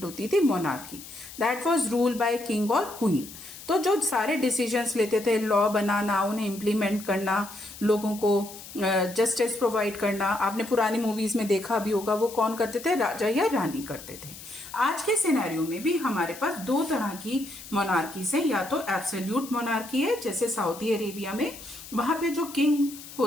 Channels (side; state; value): left; noise; hiss, 15 dB below the sound